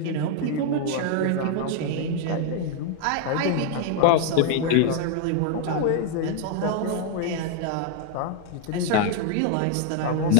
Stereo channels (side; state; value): both; different; correlation 0.00